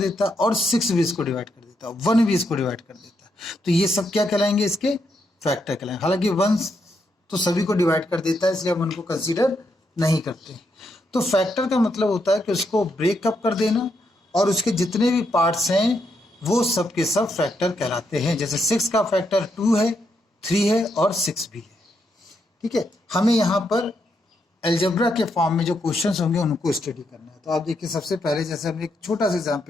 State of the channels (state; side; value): normal; both; correlation 0.80